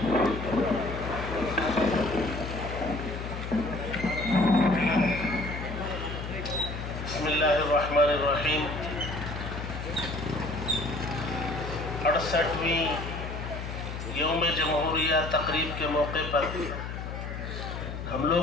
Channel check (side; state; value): left; noise; hum, 7 dB below the sound